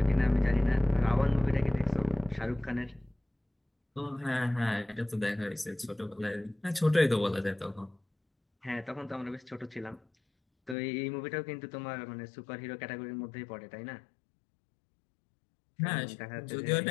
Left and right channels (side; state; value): right; drops out; at 10.8 s